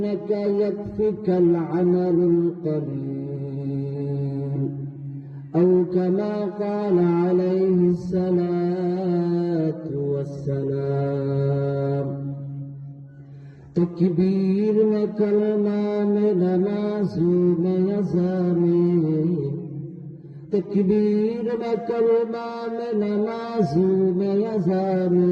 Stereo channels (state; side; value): identical; both; correlation 1.00